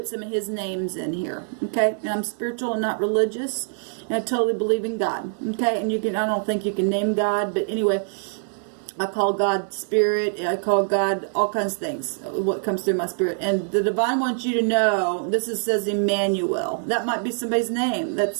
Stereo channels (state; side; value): silent; left; digital silence